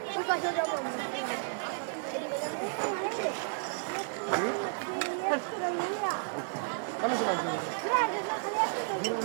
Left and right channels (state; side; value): silent; left; digital silence